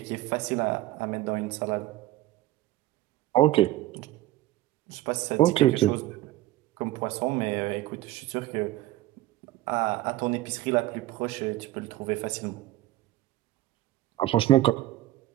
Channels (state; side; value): quieter; left; 15.8 dB